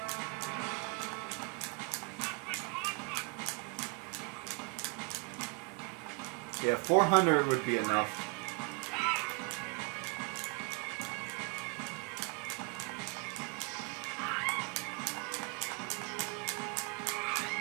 Yeah, 400 would be enough.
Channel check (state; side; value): quieter; left; 29.9 dB